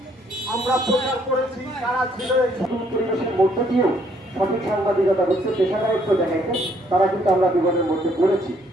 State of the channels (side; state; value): both; normal; correlation 0.67